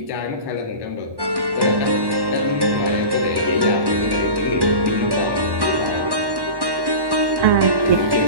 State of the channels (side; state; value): left; late; 1.1 ms